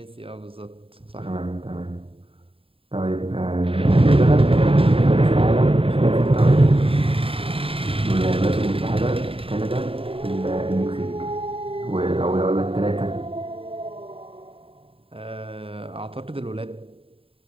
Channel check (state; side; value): late; left; 0.27 ms